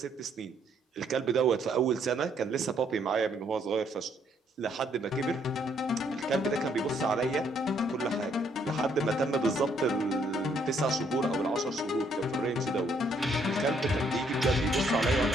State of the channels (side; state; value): both; normal; correlation 0.69